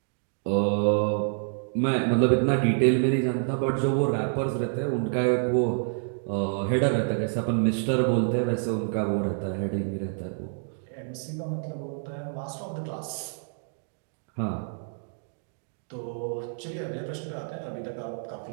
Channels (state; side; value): silent; left; digital silence